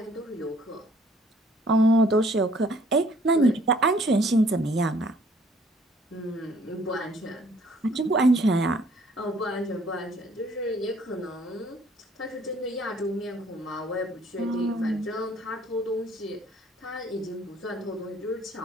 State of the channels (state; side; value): normal; both; correlation 0.60